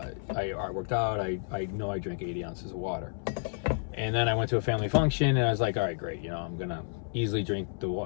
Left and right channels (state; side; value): silent; right; 57 dB below the other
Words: I worked out. I know I drank 80 ounces of water. And then I went to a family function, and I was like, all right, great. I'm going to easily drink the